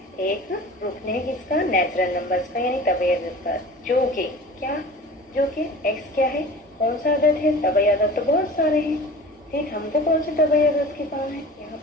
एक रुकने है किसका, नेचुरल नंबर्स का, यानी तबई अदद का, जो कि एक्स क्या है, कौन सा अदद है, तबई अदद तो बहुत सारे हैं, ठीक, हमको कौन से तबई अदद के काम है यहाँ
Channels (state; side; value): normal; both; correlation 0.39